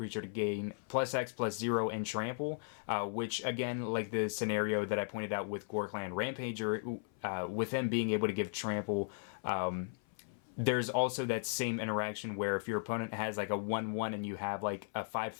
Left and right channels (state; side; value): silent; right; 53 dB below the other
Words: to gain +X/+0 and trample, which again, like the scenario that I pointed out with Ghor-Clan Rampager, with them being able to give trample, there's also that same interaction where if your opponent has like a 1/1 and you have like a